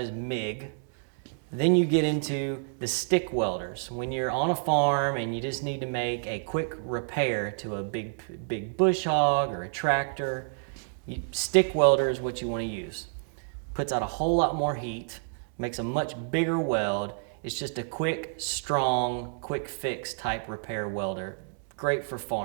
MIG. Then you get into the stick welders. When you're on a farm and you just need to make a quick repair to a big bush hog or a tractor, stick welder is what you want to use. Puts out a whole lot more heat, makes a much bigger weld. It's just a quick, strong, quick fix type repair welder. Great for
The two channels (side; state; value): left; silent; digital silence